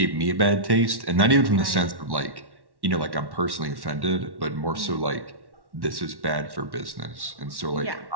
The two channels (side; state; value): left; late; 1.1 ms